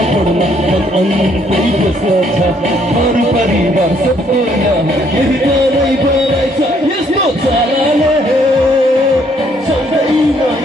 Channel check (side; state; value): both; normal; correlation 0.67